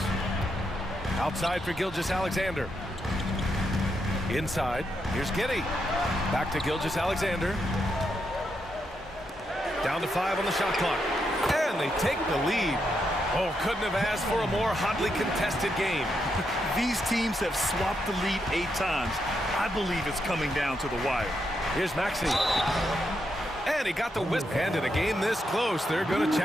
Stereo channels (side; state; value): both; normal; correlation 0.81